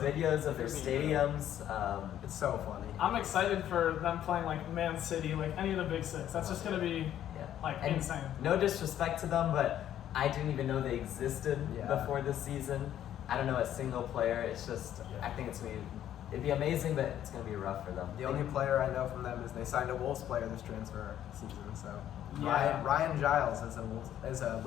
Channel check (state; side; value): quieter; right; 11.2 dB